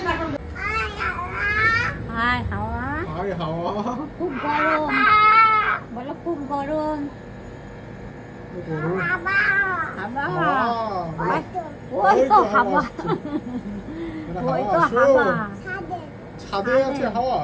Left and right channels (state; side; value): identical; both; correlation 1.00